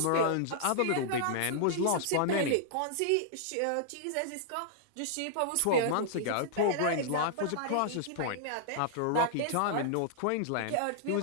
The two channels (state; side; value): different; both; correlation -0.01